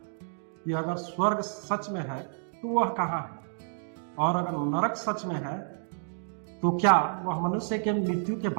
कि अगर स्वर्ग सच में है तो वह कहाँ है, और अगर नरक सच में है तो क्या वह मनुष्य के मृत्यु के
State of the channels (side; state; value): left; silent; digital silence